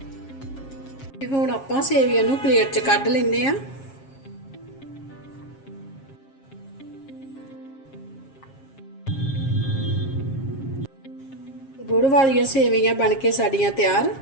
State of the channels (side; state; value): right; late; 7.4 ms